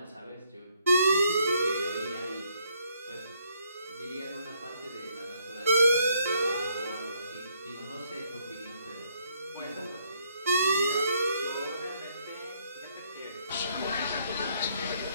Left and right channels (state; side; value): inverted; both; correlation -0.70